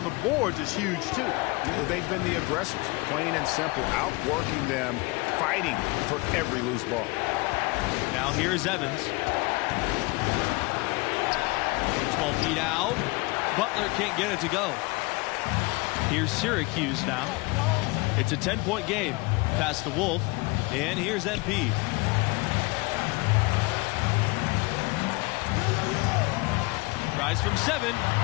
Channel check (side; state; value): right; quieter; 25.6 dB